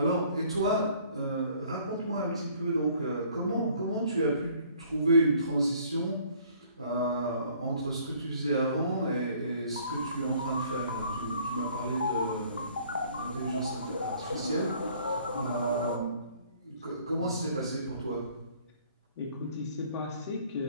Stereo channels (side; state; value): both; inverted; correlation -0.58